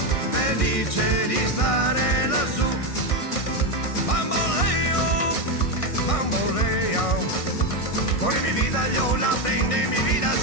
felice di stare lassù. Bamboleo, bamboleo, por mi vida yo la prende mi vida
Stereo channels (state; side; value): late; right; 1.6 ms